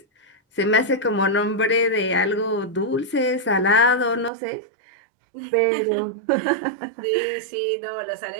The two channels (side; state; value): left; drops out; at 4.3 s